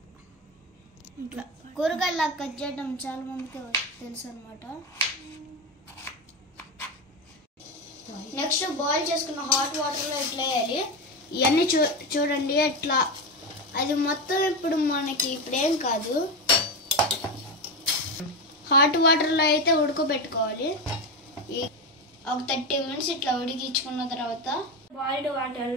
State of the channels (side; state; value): both; normal; correlation 0.16